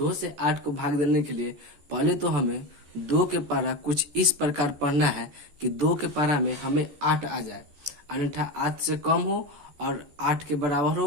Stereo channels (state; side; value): late; left; 14 ms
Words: से 8 को भाग देने के लिए पहले तो हमें 2 के पारा कुछ इस प्रकार पढ़ना है कि 2 के पारा में हमें 8 आ जाए, अन्यथा 8 से कम हो और 8 के बराबर हो